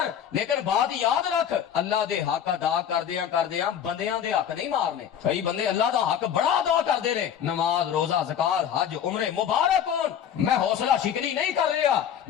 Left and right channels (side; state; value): right; quieter; 9.1 dB